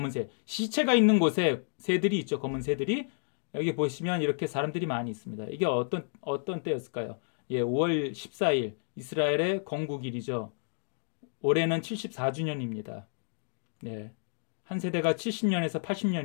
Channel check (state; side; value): silent; right; digital silence